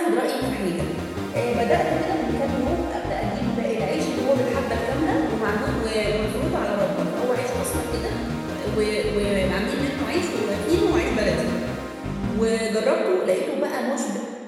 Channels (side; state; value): both; identical; correlation 1.00